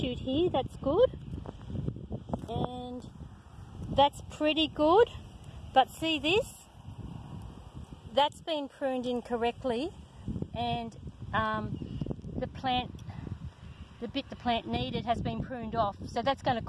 here, that's good. And that's pretty good. But see this? That's been pruned incorrectly, and the bit the plant needed has been pruned off. So that's going to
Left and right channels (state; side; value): identical; both; correlation 1.00